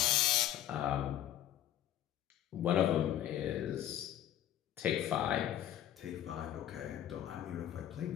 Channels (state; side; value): quieter; right; 11.7 dB